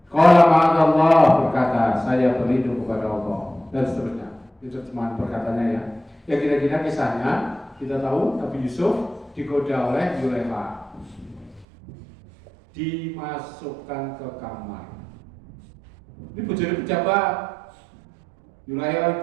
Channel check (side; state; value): left; drops out; at 11.7 s